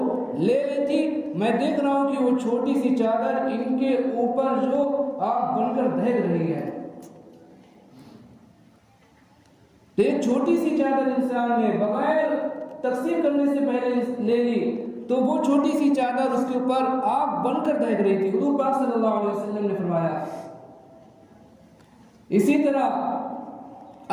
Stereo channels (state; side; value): identical; both; correlation 1.00